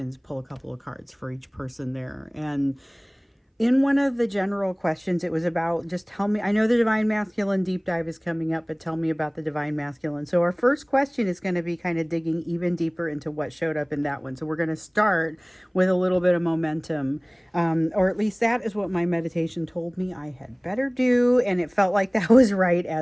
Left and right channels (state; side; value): identical; both; correlation 1.00